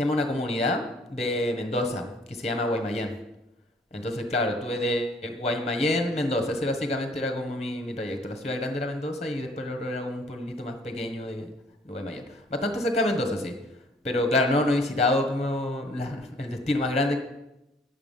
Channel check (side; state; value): both; normal; correlation 0.59